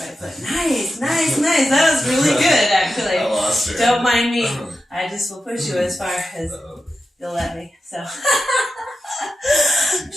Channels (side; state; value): both; normal; correlation 0.91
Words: foot. Nice. That was really good, actually. I lost her. Don't mind me. I just will push you as far as you'll let me. So.